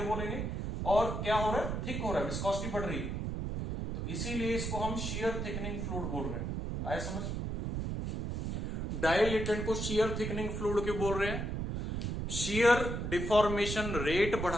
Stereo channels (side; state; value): right; noise; rumble, 3 dB below the sound